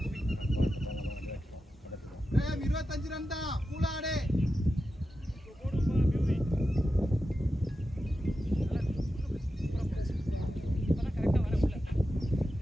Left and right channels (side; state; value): both; normal; correlation 0.91